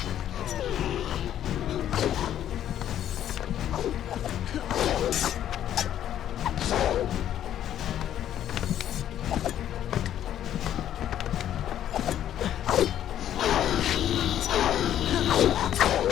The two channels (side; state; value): right; quieter; 11.0 dB